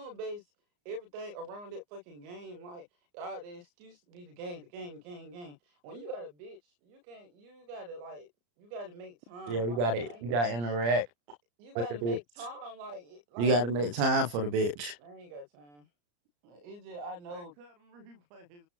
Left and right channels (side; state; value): left; late; 34 ms